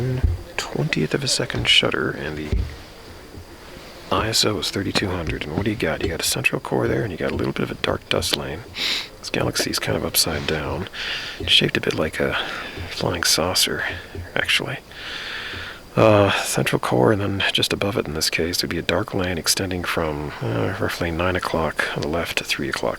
of a second shutter, and the ISO is 3200. And what do you got? You got a central core there, and you got a little bit of a dark dust lane. This galaxy is kind of upside down. It's shaped a bit like a flying saucer, actually. Central core, and then just above it in this case would be a dark lane extending from roughly 9 o'clock on the left to 3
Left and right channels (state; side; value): identical; both; correlation 1.00